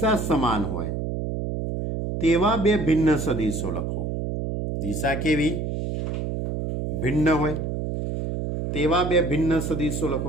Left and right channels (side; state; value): right; noise; hum, 3 dB below the sound